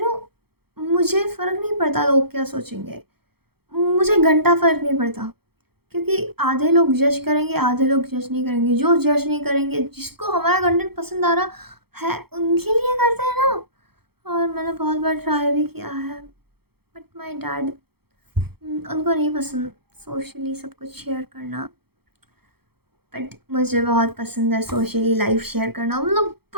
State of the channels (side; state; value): left; late; 0.96 ms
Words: नो, मुझे फ़र्क नहीं पड़ता लोग क्या सोचेंगे, मुझे घंटा फ़र्क नहीं पड़ता, क्योंकि आधे लोग जज करेंगे, आधे लोग जज नहीं करेंगे। जो जज नहीं करेंगे, जिसको हमारा कंटेंट पसंद आ रहा है, उनके लिए करते हैं ना। और मैंने बहुत बार ट्राई भी किया है, बट माय डैड, उनको नहीं पसंद सोशली सब कुछ शेयर करना, बट मुझे बहुत पसंद है सोशली लाइफ शेयर करना, मतलब